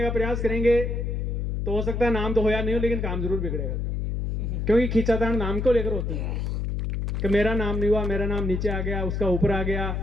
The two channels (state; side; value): noise; left; hum, 1 dB below the sound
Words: का प्रयास करेंगे तो हो सकता है नाम तो हो या नहीं हो, लेकिन काम जरूर बिगड़ेगा। क्योंकि खींचातान नाम को लेकर होती है कि मेरा नाम नहीं हुआ, मेरा नाम नीचे आ गया, उसका ऊपर आ गया,